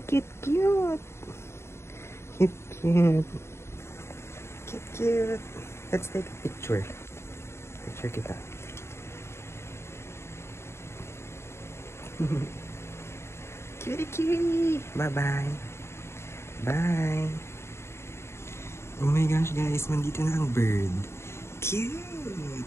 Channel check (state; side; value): late; right; 0.13 ms